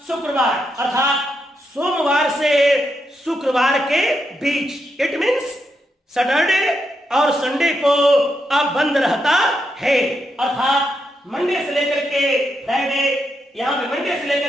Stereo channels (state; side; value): normal; both; correlation 0.82